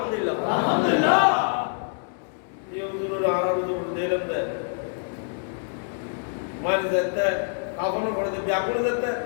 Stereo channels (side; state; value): right; silent; 61 dB below the other